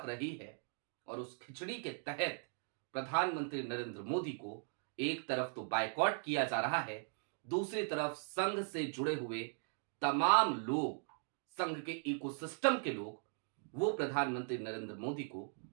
रही है और उस खिचड़ी के तहत प्रधानमंत्री नरेंद्र मोदी को एक तरफ तो बायकॉट किया जा रहा है, दूसरी तरफ संघ से जुड़े हुए तमाम लोग, संघ के इकोसिस्टम के लोग, वो प्रधानमंत्री नरेंद्र मोदी को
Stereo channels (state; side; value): silent; left; 52 dB below the other